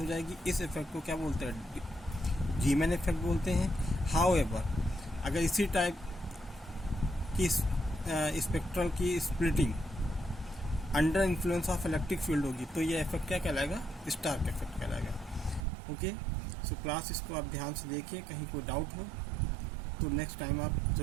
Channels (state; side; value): drops out; left; at 15.7 s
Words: जाएगी। इस इफेक्ट को क्या बोलते हैं, जीमन इफेक्ट बोलते हैं। हाउएवर अगर इसी टाइप की स्पेक्ट्रल की splitting under influence of electric field होगी तो ये इफेक्ट क्या कहलाएगा, स्टार्क इफेक्ट कहलाएगा। ओके, सो क्लास इसको आप ध्यान से देखिए, कहीं कोई डाउट हो तो नेक्स्ट टाइम आप